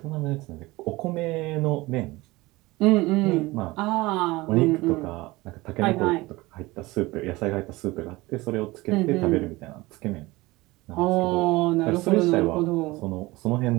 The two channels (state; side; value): quieter; left; 20.8 dB